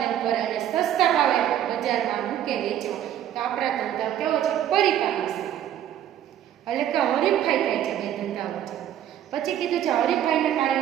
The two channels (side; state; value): left; quieter; 11.0 dB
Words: કરે અને સસ્તા ભાવે બજારમાં મૂકે વેચો તો આપણા ધંધા કેવો છે? પરિપાટી છે. એટલે કે હરીફાઈ થાય છે બે ધંધા વચ્ચે. પછી કીધું છે હરીફાઈના